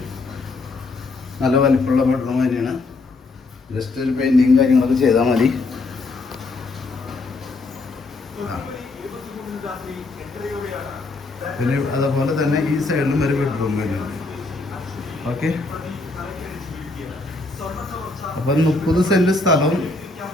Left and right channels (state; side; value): quieter; right; 3.4 dB